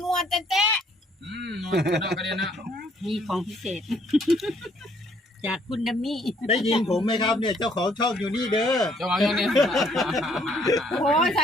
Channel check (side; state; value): both; normal; correlation 0.65